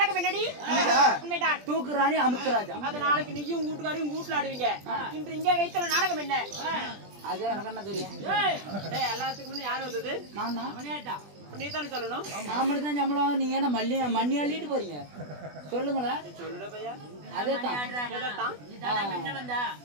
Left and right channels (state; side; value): late; left; 20 ms